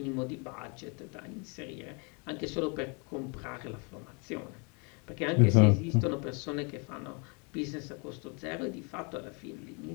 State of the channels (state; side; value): quieter; right; 33.8 dB